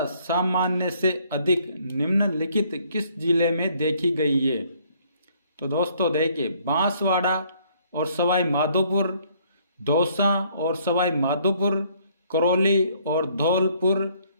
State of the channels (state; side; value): inverted; both; correlation -0.64